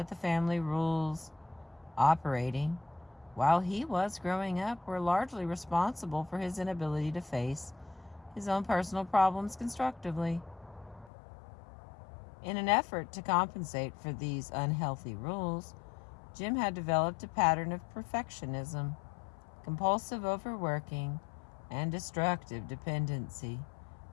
the family rules operating while he was growing up were largely responsible for his inability to face his own personal problems constructively. In an effort to compensate for these unhealthy rules, Jim had developed a pattern of perfectionism, compulsive overworking, and destructive dependency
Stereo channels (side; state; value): right; drops out; at 11.1 s